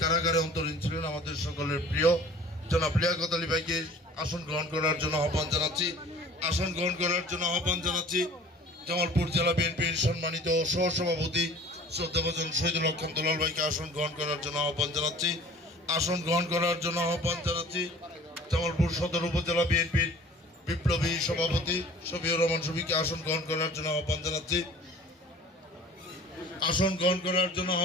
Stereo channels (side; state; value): both; normal; correlation 0.47